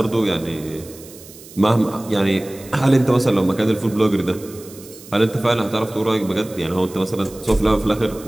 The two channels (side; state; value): right; noise; hiss, 19 dB below the sound